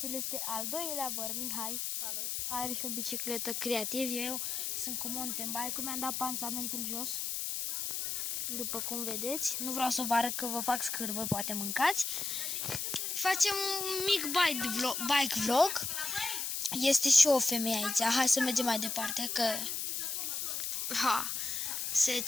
El este al doilea văr, Mihai. Salut. Are și o bicicletă creativ. Eu sunt cu mountain bike-ul, mi-am dat pansamentul jos. După cum vedeți. Nu vreau să vă arăt că vă fac scârbă, poate mâncați. Facem un mic bike vlog. Este și o femeie aici. Hai să mergem mai departe, că se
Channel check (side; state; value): left; noise; hiss, 2 dB below the sound